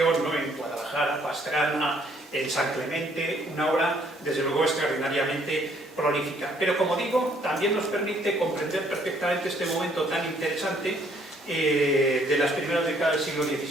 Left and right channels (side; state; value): both; normal; correlation 0.65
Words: ¿no?, en Guadalajara, Pastrana, en San Clemente, una obra desde luego extraordinariamente prolífica. Pero como digo, también nos permite comprender perfectamente este momento tan interesante de las primeras décadas del siglo